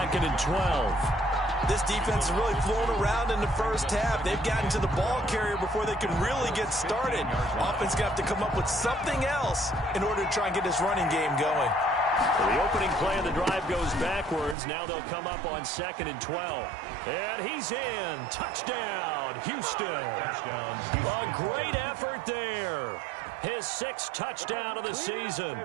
and 12. This defense is really flown around in the first half. They've gotten to the ball carrier before they can really get started. Offense got to come up with something else in order to try and get this running game going. Well, the opening play of the drive goes backwards. Now they'll come up on 2nd and 12. And he's in. Touchdown, Houston. Touchdown, A great effort there. his 6th touchdown of the season.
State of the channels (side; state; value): left; drops out; at 14.6 s